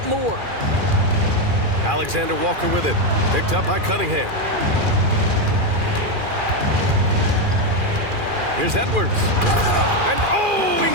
more. Alexander Walker with it. Picked up by Cunningham. Here's Edwards. And oh, he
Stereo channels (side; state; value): left; late; 2.4 ms